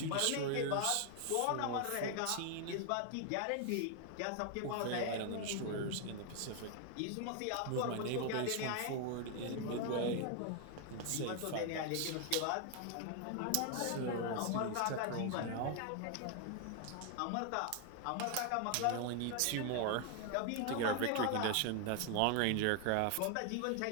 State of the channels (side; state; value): both; different; correlation 0.00